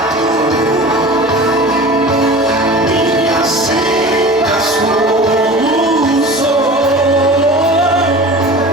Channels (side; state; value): both; normal; correlation 0.37